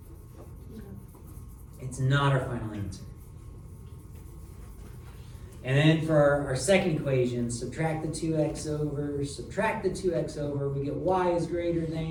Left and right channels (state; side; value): identical; both; correlation 1.00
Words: No. It's not our final answer. And then for our second equation, subtract the 2x over, subtract the 2x over, we get y is greater